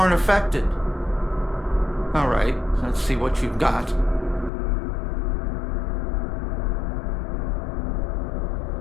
affected. All right, let's see what you've got.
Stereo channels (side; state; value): right; drops out; at 4.5 s